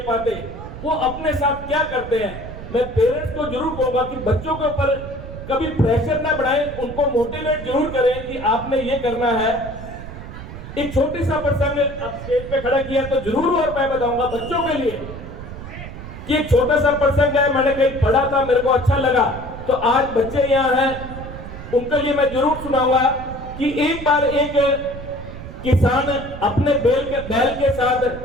पाते, वो अपने साथ क्या करते हैं। मैं पेरेंट्स को जरूर कहूंगा कि बच्चों के ऊपर कभी प्रेशर ना बढ़ाएं, उनको मोटिवेट जरूर करें कि आपने ये करना है। एक छोटी सा प्रसंग अब स्टेज पे खड़ा किया तो जरूर और मैं बताऊंगा बच्चों के लिए कि एक छोटा सा प्रसंग है, मैंने कहीं पढ़ा था, मेरे को अच्छा लगा, तो आज बच्चे यहाँ हैं, उनके लिए मैं जरूर सुनाऊंगा कि एक बार एक किसान अपने बैल के साथ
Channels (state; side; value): noise; right; rumble, 11 dB below the sound